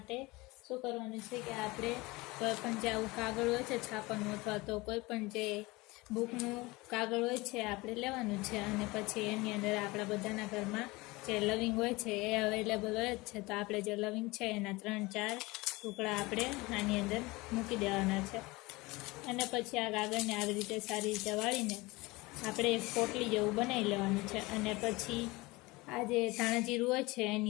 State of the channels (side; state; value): right; quieter; 22.5 dB